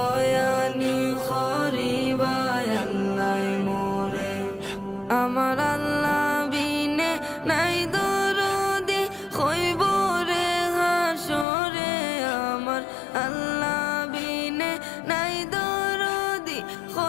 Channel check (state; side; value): drops out; right; at 11.5 s